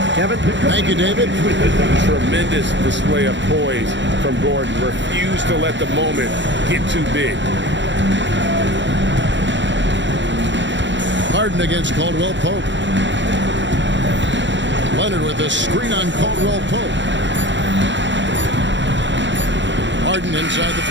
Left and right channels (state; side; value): late; left; 0.53 ms